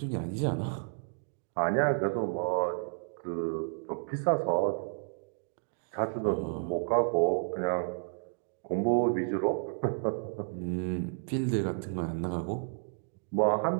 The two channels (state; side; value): silent; left; digital silence